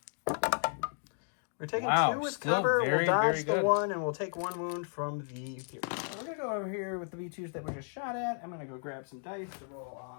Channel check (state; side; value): silent; right; digital silence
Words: We're taking 2 with still cover. very, we'll dodge very the good. 1, and we'll take 1 wound from the pierce. So we're going to go over here with the V2s that we just shot at. I'm going to go grab some dice to roll